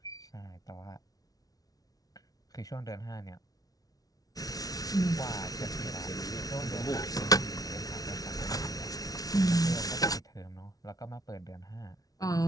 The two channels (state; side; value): late; right; 0.18 ms